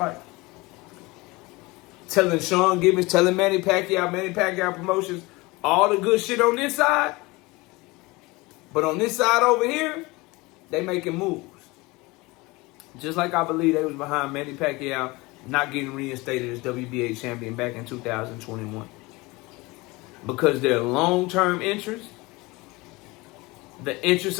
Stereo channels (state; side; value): quieter; right; 23.2 dB